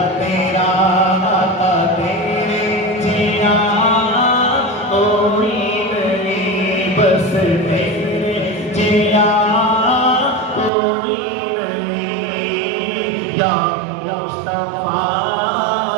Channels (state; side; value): drops out; left; at 10.7 s